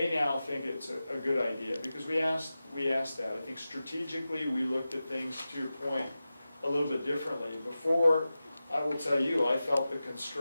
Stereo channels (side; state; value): both; inverted; correlation -0.94